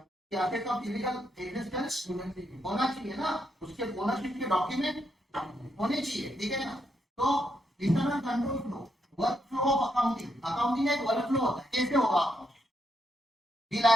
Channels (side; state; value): both; normal; correlation 0.79